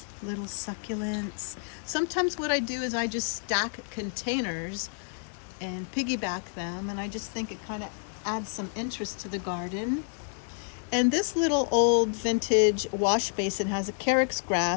little succulents. Sometimes what I do is I just stack containers and piggyback them, and I just think it kind of adds some interest to the garden. And this little old vintage wash basin has a carex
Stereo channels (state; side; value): silent; right; 58 dB below the other